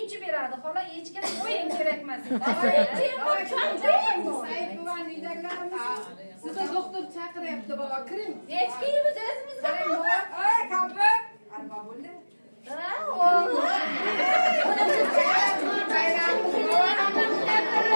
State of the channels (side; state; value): both; inverted; correlation -1.00